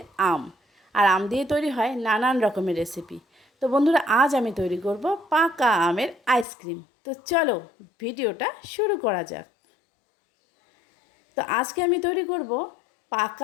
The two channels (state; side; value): drops out; right; at 6.5 s